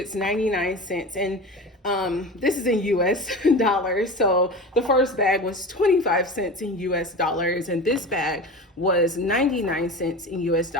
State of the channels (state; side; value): normal; both; correlation 0.31